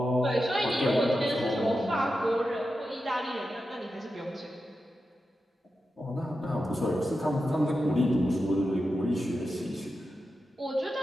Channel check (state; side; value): normal; both; correlation 0.90